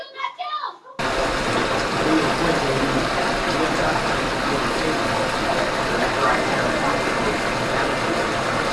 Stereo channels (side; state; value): both; identical; correlation 1.00